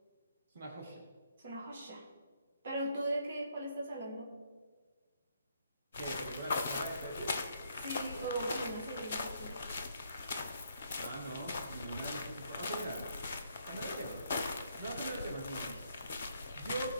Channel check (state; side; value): inverted; both; correlation -0.71